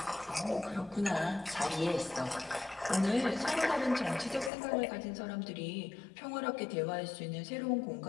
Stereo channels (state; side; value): drops out; right; at 4.5 s